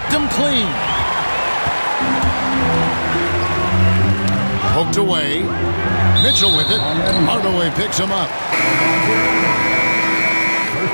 him clean. Poked away. Mitchell with it. Hardaway picks him up. First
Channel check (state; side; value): inverted; both; correlation -1.00